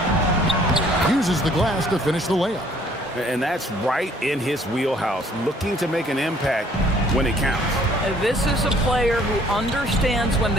Uses the glass to finish the layup. And that's right in his wheelhouse, looking to make an impact when it counts. This is a player who understands when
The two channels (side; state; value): both; normal; correlation 0.59